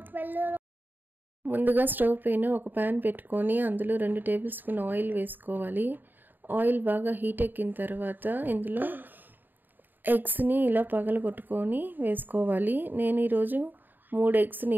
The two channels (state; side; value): late; left; 0.091 ms